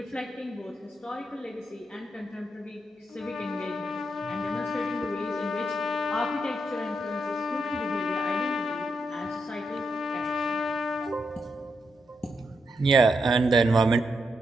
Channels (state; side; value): normal; both; correlation 0.82